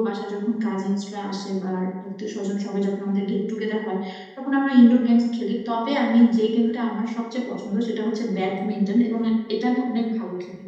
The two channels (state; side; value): identical; both; correlation 1.00